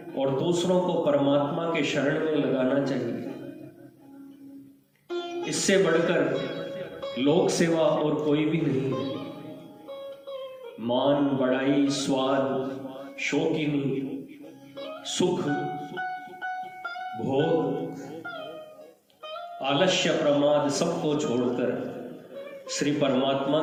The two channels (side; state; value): both; identical; correlation 1.00